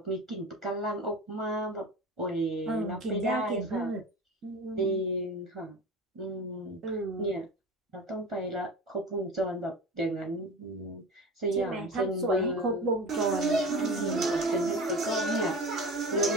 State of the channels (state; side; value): normal; both; correlation 0.32